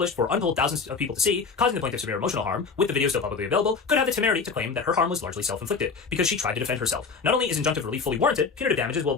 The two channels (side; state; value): right; quieter; 5.1 dB